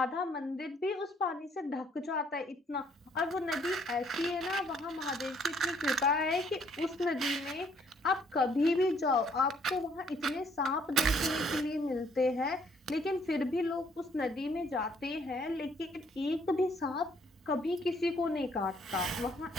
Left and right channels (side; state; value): both; normal; correlation 0.65